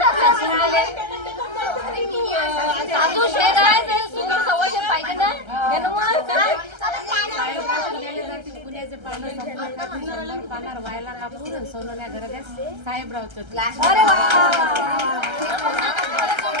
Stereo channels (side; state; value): left; late; 1.3 ms